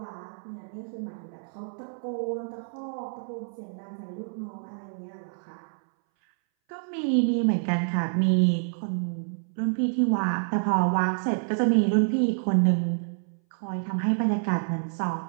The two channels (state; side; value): silent; left; 60 dB below the other